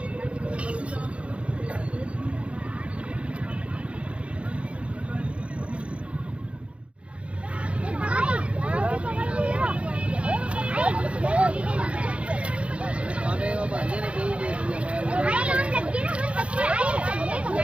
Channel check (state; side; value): late; left; 0.061 ms